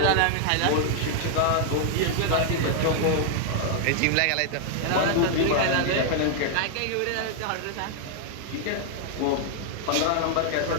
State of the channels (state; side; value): different; both; correlation 0.00